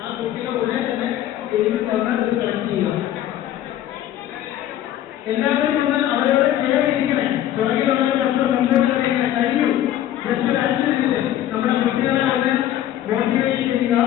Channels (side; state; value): right; quieter; 12.2 dB